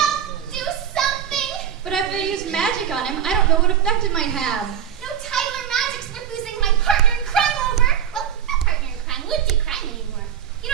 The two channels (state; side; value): quieter; left; 9.1 dB